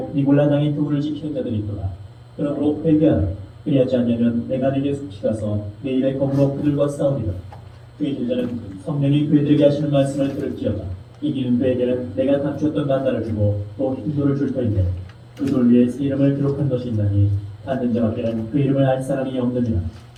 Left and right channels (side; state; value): both; identical; correlation 1.00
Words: 니골라 당의 교훈을 지키는 자들이 있도다. 그러므로 회개하라. 그리하지 않으면 내가 네게 숙시가서 내 일에 검으로 그들과 싸우리라. 그의 제자는 성령이 그들에게 하시는 말씀을 들을지어다. 이기는 그에게는 내가 감추었던 만나를 주고 또 흰돌을 줄 터인데 그 돌 위에 새 이름을 기록한 것이 있나니 받는 자밖에는 그 이름을 알 사람이 없느니라.